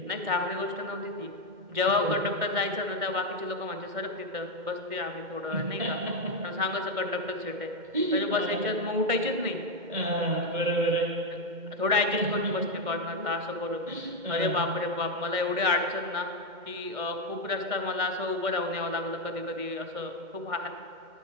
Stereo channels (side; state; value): left; late; 2.1 ms